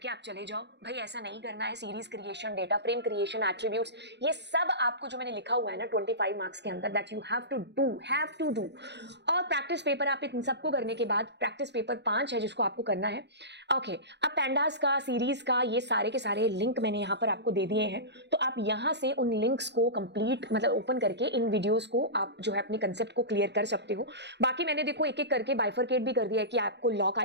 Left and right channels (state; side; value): late; left; 0.50 ms